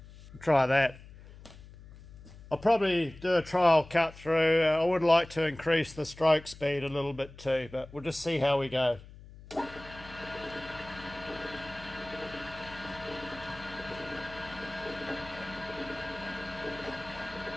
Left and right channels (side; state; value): left; noise; hum, 18 dB below the sound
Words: try that. I'll probably do a trial cut through. I would like to increase the stroke speed a little bit too, but we'll just see how we go.